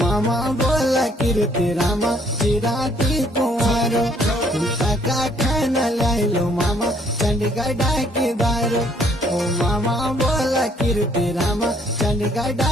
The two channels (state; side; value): normal; both; correlation 0.64